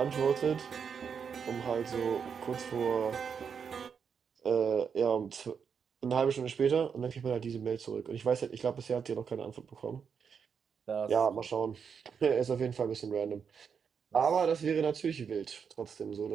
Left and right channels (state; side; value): quieter; left; 6.6 dB